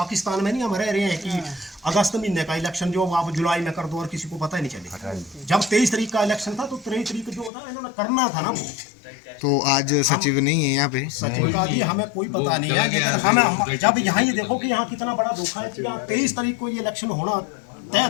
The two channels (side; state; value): right; drops out; at 7.5 s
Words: में नहीं हम रह रहे हैं कि अगस्त महीने का इलेक्शन जो आप जुलाई में कर दो और किसी को पता ही नहीं चले। जब 23 तारीख का इलेक्शन था तो 23 तारीख जो था इन्होंने करना था ना वो। तो आज सचिव नहीं है यहाँ पे, सचिव का भी हमें कोई पता नहीं है, लेकिन हमें जब यहाँ ये देखो कि यहाँ कितना बड़ा धोखा है कि यहाँ 23 तारीख को ये इलेक्शन होना तय